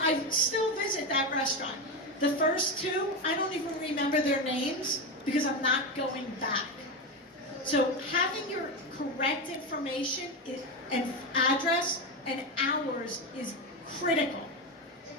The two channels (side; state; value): both; normal; correlation 0.15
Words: still visit that restaurant. The first two, I don't even remember their names because I'm not going back. So having your correct information and address and hours is critical.